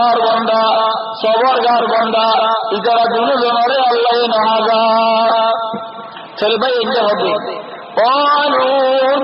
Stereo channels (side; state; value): both; identical; correlation 1.00